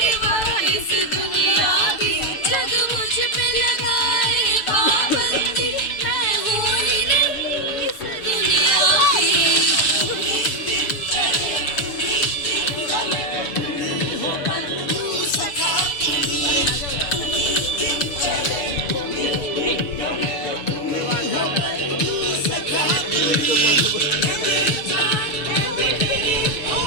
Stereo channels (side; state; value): right; late; 6.8 ms